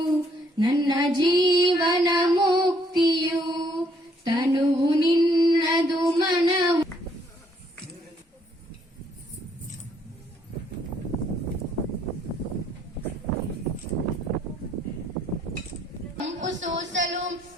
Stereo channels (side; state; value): both; normal; correlation 0.67